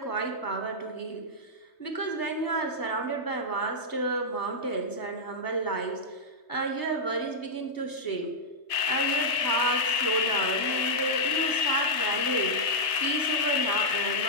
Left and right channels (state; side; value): late; right; 3.3 ms